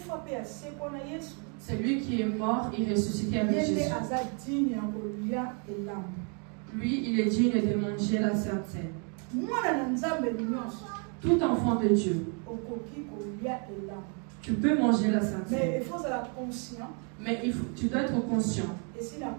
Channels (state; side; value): quieter; left; 38.4 dB